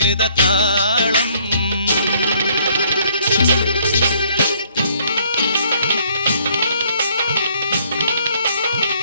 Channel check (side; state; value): both; inverted; correlation -0.64